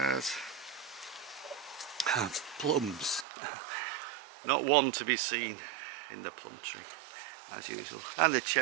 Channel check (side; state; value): left; drops out; at 3.2 s